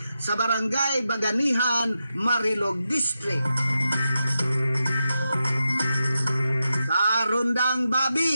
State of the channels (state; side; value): inverted; both; correlation -0.89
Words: sa Barangay Baganihan, Marilog District. Karundang